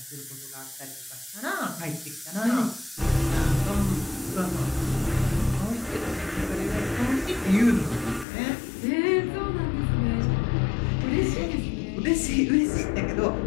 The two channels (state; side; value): drops out; right; at 8.2 s